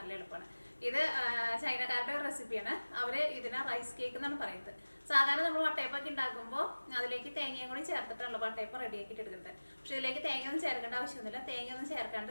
എളുപ്പമാണ്. ഇത് ചൈനക്കാരുടെ റെസിപ്പിയാണ്. അവര് ഇതിനെ റൈസ് കേക്ക് എന്നാണ് പറയുന്നത്. സാധാരണ നമ്മൾ വട്ടയപ്പൊക്കെ ഉണ്ടാക്കുമ്പോൾ അതിലേക്ക് തേങ്ങയും കൂടി ചേർത്തിട്ടുള്ള വട്ടയപ്പം റെഡി ആക്കിയിട്ട് എടുക്കുന്നത്. പക്ഷെ ഇതിലേക്ക് തേങ്ങയൊന്നും ചേർക്കേണ്ട ആവശ്യമൊന്നുമില്ല. തേങ്ങയൊന്നും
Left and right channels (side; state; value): both; inverted; correlation -1.00